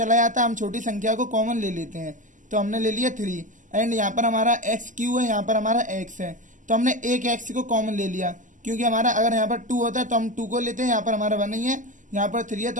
जाता है, हम छोटी संख्या को कॉमन ले लेते हैं, तो हमने ले लिया 3। एंड यहाँ पर हमारा x³ है, यहाँ पर हमारा x है, तो हमने एक x को कॉमन ले लिया, क्योंकि हमारा अगर यहाँ पर 2 होता है तो हम 2 को लेते हैं, यहाँ पर हमारा 1 नहीं है, यहाँ पर 3 है,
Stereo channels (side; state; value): left; late; 0.37 ms